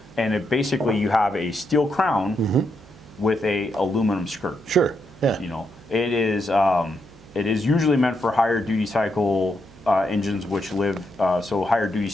And it basically, you have a steel crown with a aluminum skirt. Sure. Yeah. You know, it is usually meant for higher duty cycle engines, which live, so higher duty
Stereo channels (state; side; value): noise; right; hum, 22 dB below the sound